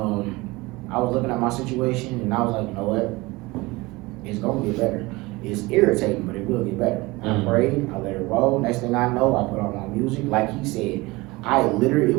I was looking at my situation and I was like, you know what? It's gonna get better. It's irritating, but it will get better. I prayed, I let it roll. Next thing I know, I put on my music. Like he said,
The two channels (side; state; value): left; quieter; 22.3 dB